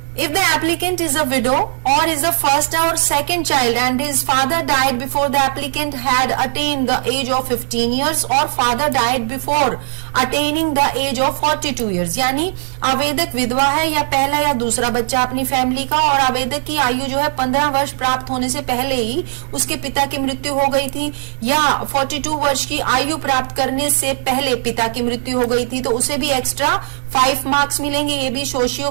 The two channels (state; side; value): silent; left; 64 dB below the other